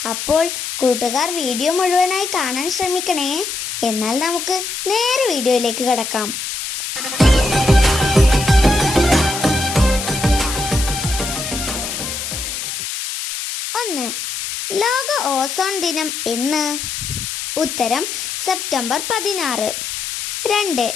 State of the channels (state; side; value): noise; left; hiss, 5 dB below the sound